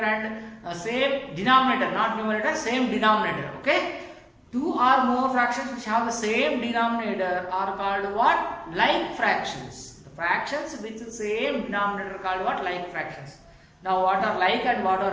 same denominator, not numerator, same denominator. Okay, two or more fractions which have the same denominator are called what? Like fractions. The fractions with the same denominator are called what? Like fractions. Now what are like and what are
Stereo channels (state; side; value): identical; both; correlation 1.00